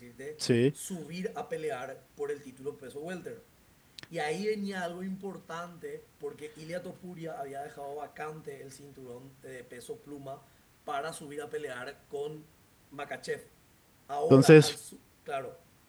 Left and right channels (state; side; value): identical; both; correlation 1.00